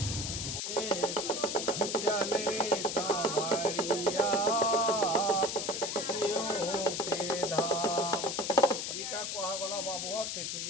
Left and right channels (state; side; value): noise; left; hiss, 3 dB below the sound